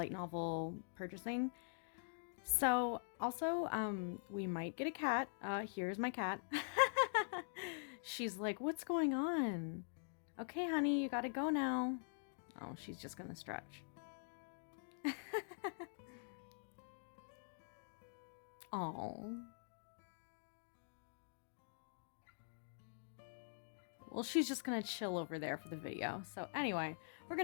novel purchasing. So, also, we might get a cat. Here's my cat. She's like, what's going on? Okay, honey, you gotta go now. Oh, she's just gonna stretch. Oh. Well, she's just gonna chill over there for the video. So anyway, we're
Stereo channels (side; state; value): right; silent; digital silence